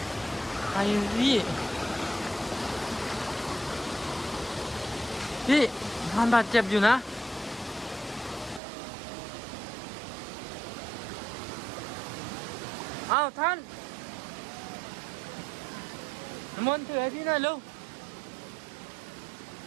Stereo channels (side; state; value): left; drops out; at 8.6 s